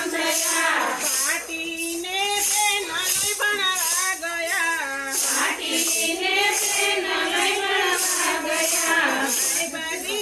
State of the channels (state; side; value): identical; both; correlation 1.00